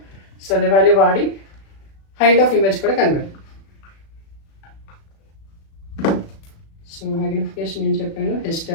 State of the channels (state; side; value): late; right; 36 ms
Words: సో అదే వాల్యూ వాడి హైట్ ఆఫ్ ఇమేజ్ కూడా కనిపెడదాం. సో మ్యాగ్నిఫికేషన్ ఏం చెప్పాను,